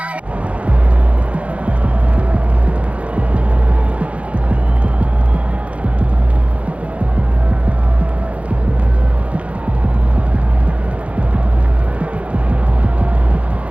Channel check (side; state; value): left; late; 0.064 ms